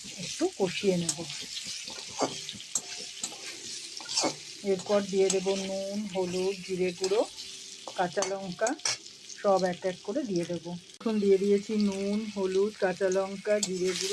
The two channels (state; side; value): identical; both; correlation 1.00